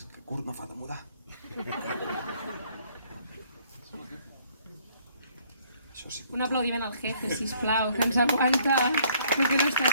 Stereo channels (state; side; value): inverted; both; correlation -0.63